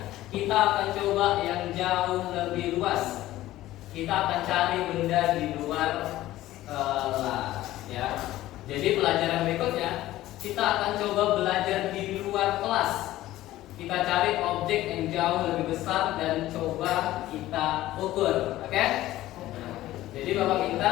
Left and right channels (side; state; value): right; quieter; 15.4 dB